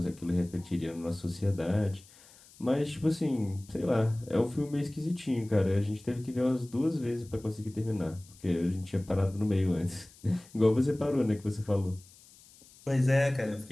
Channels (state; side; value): noise; left; hiss, 24 dB below the sound